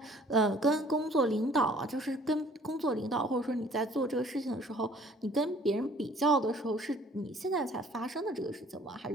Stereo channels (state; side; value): normal; both; correlation 0.56